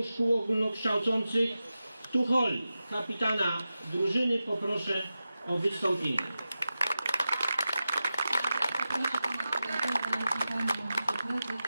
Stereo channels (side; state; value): both; inverted; correlation -0.93